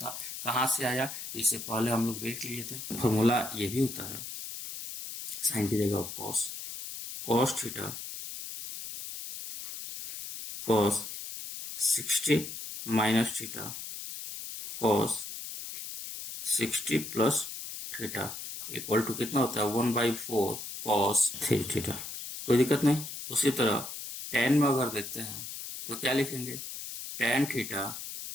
कहाँ से आया, इससे पहले हम लोग देख लिए थे। फॉर्मूला ये भी होता है, साइन की जगह cos, cos theta cos 60 minus theta cos 60 plus theta equal to कितना होता है 1/4 कॉस 3 थीटा। कोई दिक्कत नहीं। उसी तरह टेन में अगर देखते हैं तो क्या लिखेंगे, tan theta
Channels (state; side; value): noise; left; hiss, 8 dB below the sound